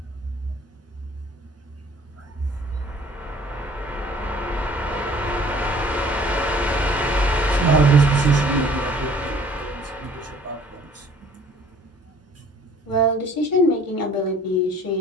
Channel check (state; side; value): normal; both; correlation 0.53